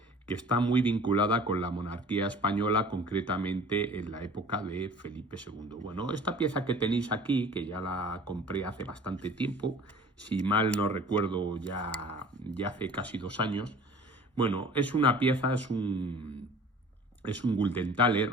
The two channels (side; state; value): both; normal; correlation 0.45